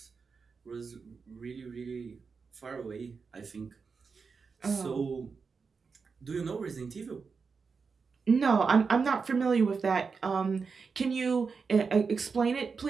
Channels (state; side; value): quieter; left; 5.2 dB